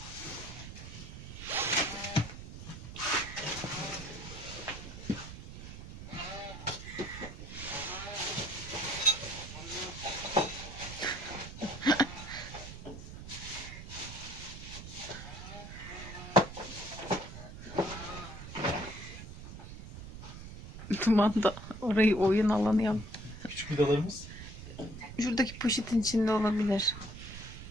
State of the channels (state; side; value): noise; right; rumble, 11 dB below the sound